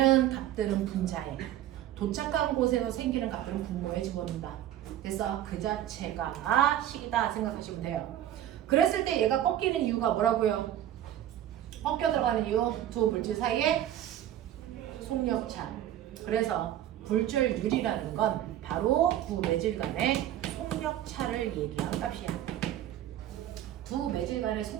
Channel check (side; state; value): left; quieter; 12.0 dB